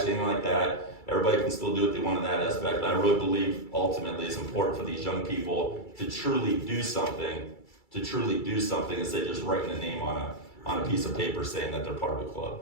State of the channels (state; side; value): late; right; 2.3 ms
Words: anything like that. everybody can still do what they want in that aspect. And I really believe ultimately it's important for these young people to truly do something instead of just writing a name on a piece of paper saying that they're part of a club,